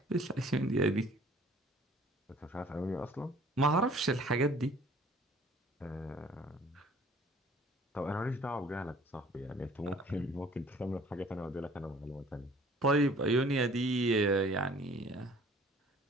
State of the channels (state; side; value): normal; both; correlation 0.53